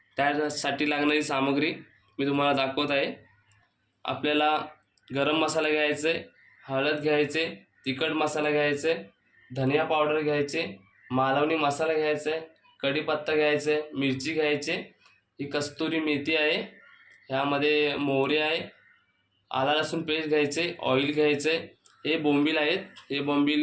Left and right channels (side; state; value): both; identical; correlation 1.00